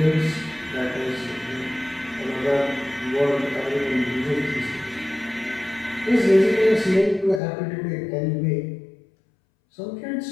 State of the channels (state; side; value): drops out; right; at 7.4 s